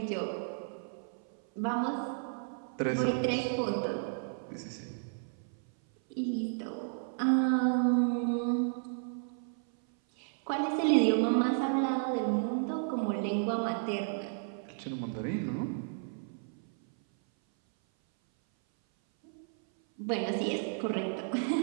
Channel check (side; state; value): left; silent; 56 dB below the other